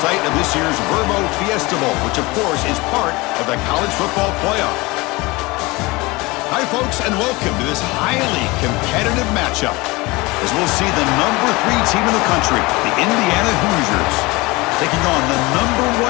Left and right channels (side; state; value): right; quieter; 23.2 dB